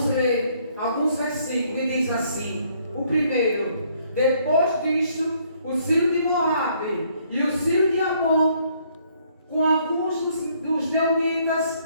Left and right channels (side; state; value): both; inverted; correlation -0.66